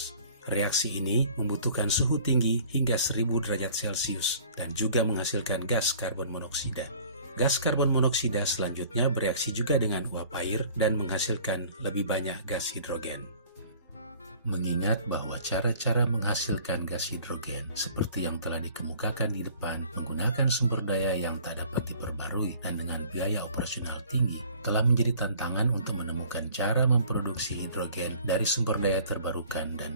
Reaksi ini membutuhkan suhu tinggi hingga 1000 derajat Celcius dan juga menghasilkan gas karbon monoksida. Gas karbon monoksida selanjutnya bereaksi juga dengan uap air dan menghasilkan lebih banyak gas hidrogen. Mengingat bahwa cara-cara menghasilkan gas hidrogen seperti yang telah dikemukakan di depan menggunakan sumber daya yang tak dapat diperbarui dan dengan biaya operasional tinggi, telah menjadi tantangan untuk menemukan cara memproduksi hidrogen dari sumber daya terbarukan dan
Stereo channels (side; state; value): both; inverted; correlation -0.51